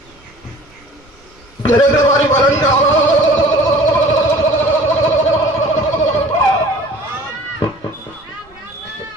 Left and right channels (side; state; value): right; noise; rumble, 29 dB below the sound